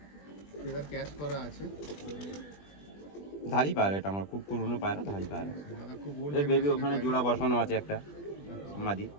ফেদার ক্যাশ করা আছে, ধারি পায়রা, এটা আমার খুব পুরনো পায়রা, ধারি পায়রা। দাদা খুব ওল্ড এর বেবি ওখানে জোড়া বসানো আছে একটা মাদি।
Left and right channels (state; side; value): late; right; 20 ms